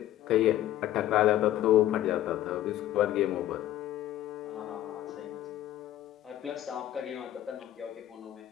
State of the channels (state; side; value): quieter; right; 13.0 dB